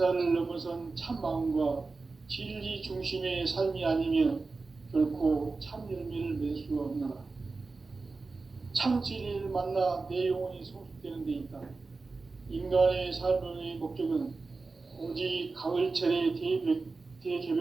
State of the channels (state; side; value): quieter; left; 3.9 dB